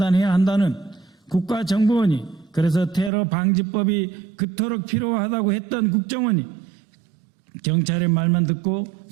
한다는 국가정보원이 그래서 테러 방지법이 그토록 필요하다고 했던 국정원이 경찰의 말만 듣고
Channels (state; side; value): drops out; left; at 3.1 s